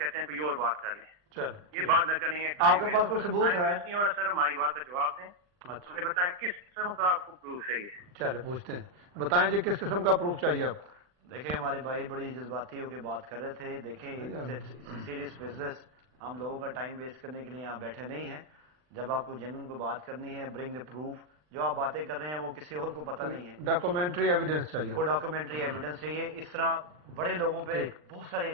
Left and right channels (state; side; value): late; left; 39 ms